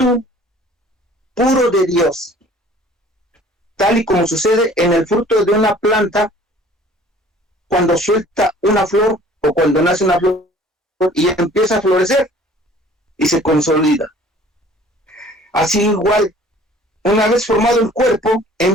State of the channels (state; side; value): normal; both; correlation 0.51